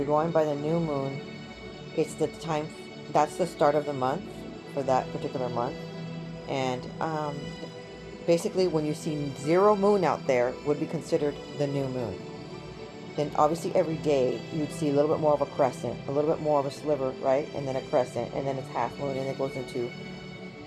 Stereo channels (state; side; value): identical; both; correlation 1.00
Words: going by the new moon, it's the time. That's the start of the month for that particular month. And basically when you see zero moon out there would be considered the new moon. Then obviously every day you'd see a little bit more of a crescent, a little bit more of a sliver, right? And then a crescent, and then it's half moon, and it goes into